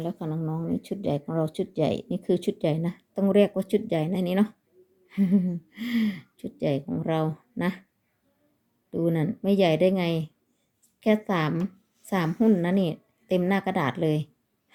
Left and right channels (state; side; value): identical; both; correlation 1.00